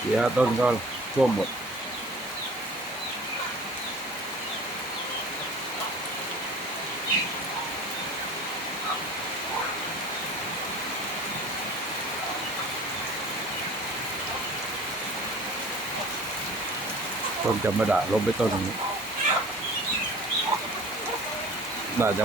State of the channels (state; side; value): normal; both; correlation 0.43